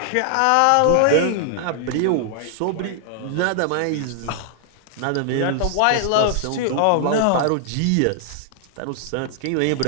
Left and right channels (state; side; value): different; both; correlation -0.01